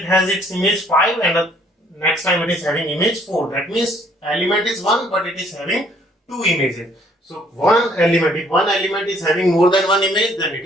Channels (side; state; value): both; normal; correlation 0.63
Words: has its image 5 and the next time it is having image 4. That means element is 1 but it is having two images. So one element, if one element is having more than one image, then it